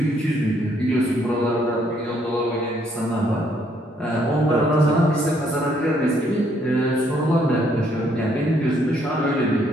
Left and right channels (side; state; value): both; normal; correlation 0.69